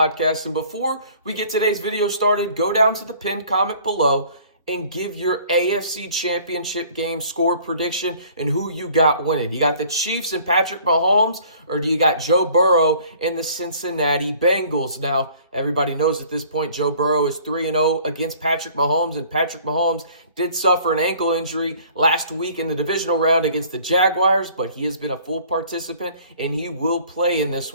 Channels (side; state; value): both; inverted; correlation -0.53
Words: And before we get today's video started, go down to the pinned comment below and give your AFC Championship game score prediction and who you got winning. You got the Chiefs and Patrick Mahomes, or do you got Joe Burrow and the Cincinnati Bengals? Now, everybody knows at this point Joe Burrow is 3-0 against Patrick Mahomes, and Patrick Mahomes did suffer an ankle injury last week in the divisional round against the Jaguars, but he has been a full participant and he will play in this